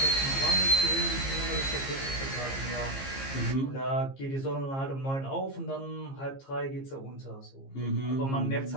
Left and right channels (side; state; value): right; late; 15 ms